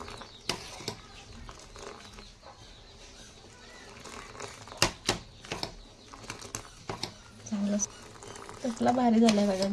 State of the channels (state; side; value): identical; both; correlation 1.00